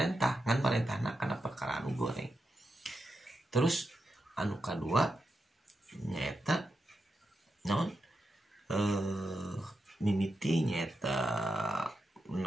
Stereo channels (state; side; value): normal; both; correlation 0.87